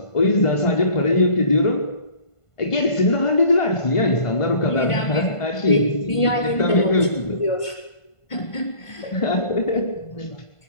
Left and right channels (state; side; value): late; right; 1.5 ms